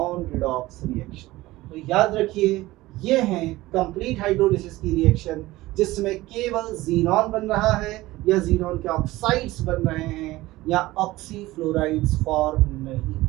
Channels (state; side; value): quieter; left; 18.2 dB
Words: redox reaction. तो याद रखिए ये हैं कंप्लीट हाइड्रोलिसिस की रिएक्शन, जिसमें केवल जीनॉन बन रहा है या जीनॉन के ऑक्साइड्स बन रहे हैं या ऑक्सीफ्लोराइड्स फॉर्म नहीं